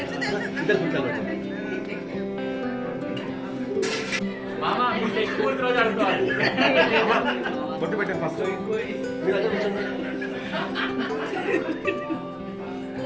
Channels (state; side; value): identical; both; correlation 1.00